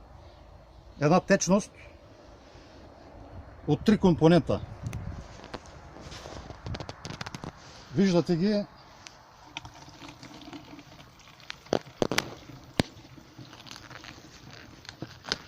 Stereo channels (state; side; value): identical; both; correlation 1.00